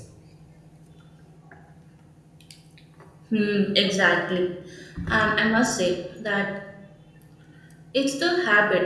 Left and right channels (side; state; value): both; identical; correlation 1.00